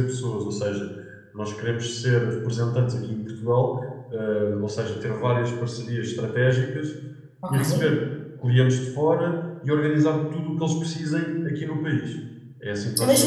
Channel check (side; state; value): both; identical; correlation 1.00